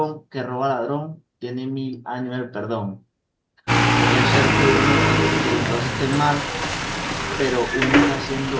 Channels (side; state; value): both; identical; correlation 1.00